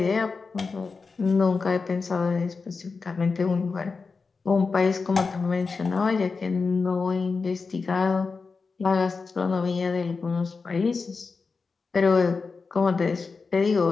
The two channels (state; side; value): quieter; right; 4.6 dB